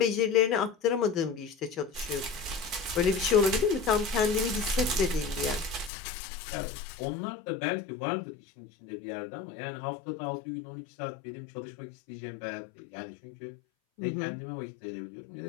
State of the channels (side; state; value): right; drops out; at 5.9 s